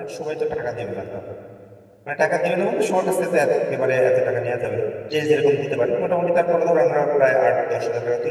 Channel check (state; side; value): identical; both; correlation 1.00